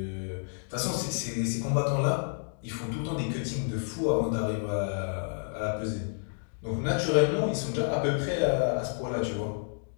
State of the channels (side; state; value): right; silent; digital silence